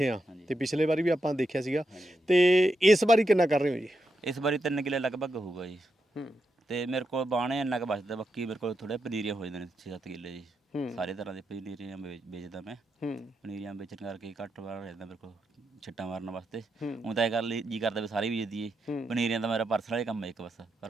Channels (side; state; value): both; normal; correlation 0.85